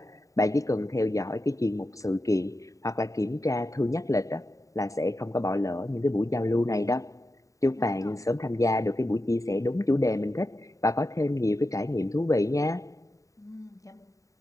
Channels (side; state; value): right; late; 0.16 ms